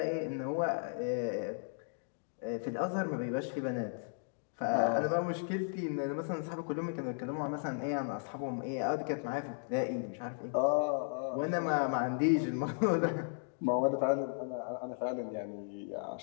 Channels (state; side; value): silent; right; digital silence